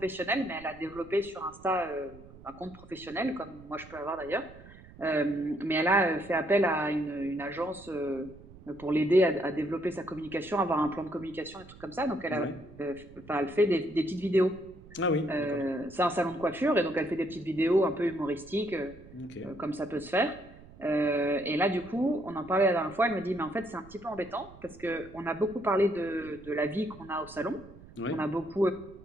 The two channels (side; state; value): right; noise; rumble, 20 dB below the sound